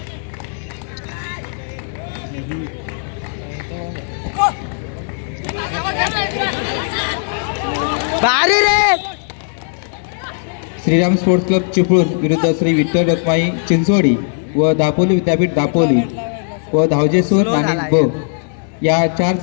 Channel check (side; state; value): right; silent; 66 dB below the other